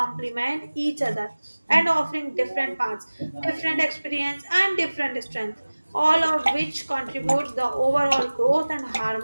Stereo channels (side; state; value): both; inverted; correlation -1.00